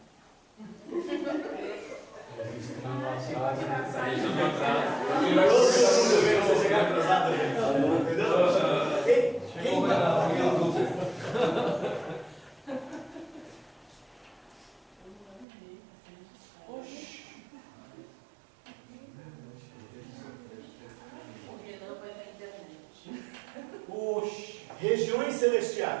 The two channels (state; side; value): drops out; left; at 15.5 s